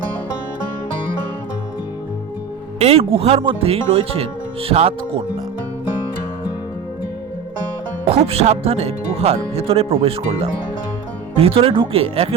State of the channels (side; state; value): left; quieter; 6.5 dB